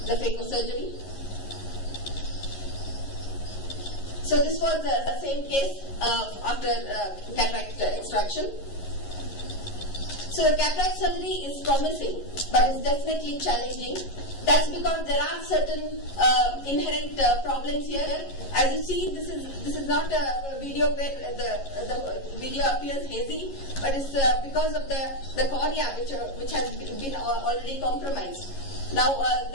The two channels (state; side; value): late; right; 11 ms